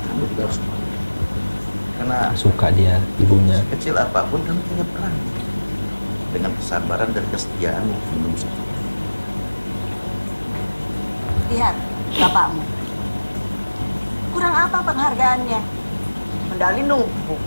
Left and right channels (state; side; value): inverted; both; correlation -1.00